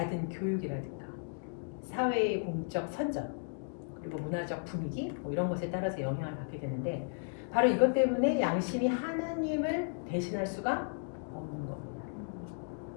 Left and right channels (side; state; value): right; silent; digital silence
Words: 교육이라든가 사회의 공적 선전 그리고 문화적 분위기 뭐 이런 것에 따라서 영향을 받게 되는데 바로 이것 때문에 양심이 하나님을 대신할 수가 없는 겁니다.